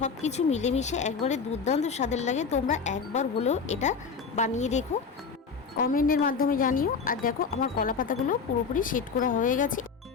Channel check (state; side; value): quieter; right; 5.5 dB